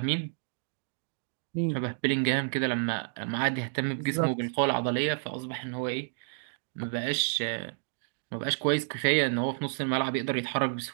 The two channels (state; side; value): silent; left; digital silence